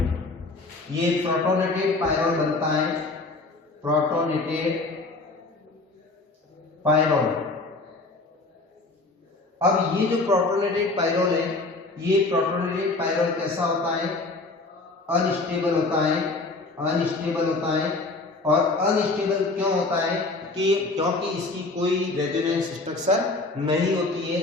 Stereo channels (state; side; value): quieter; right; 3.4 dB